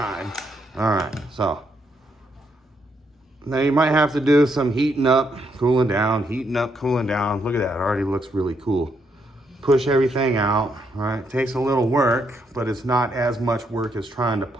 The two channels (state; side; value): normal; both; correlation 0.76